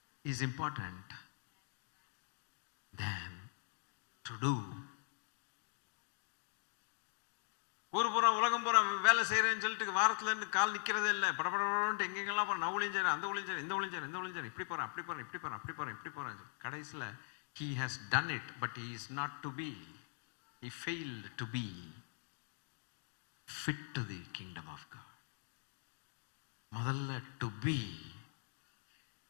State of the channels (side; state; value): right; silent; digital silence